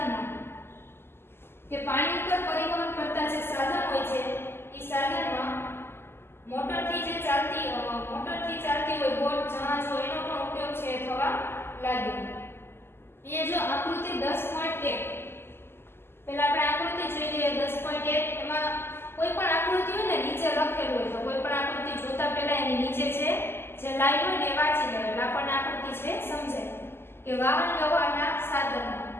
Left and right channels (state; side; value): late; right; 0.12 ms